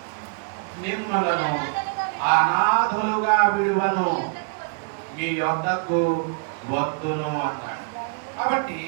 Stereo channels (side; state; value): left; quieter; 35.9 dB